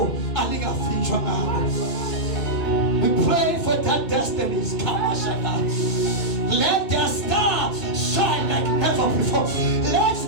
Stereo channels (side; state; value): right; late; 2.6 ms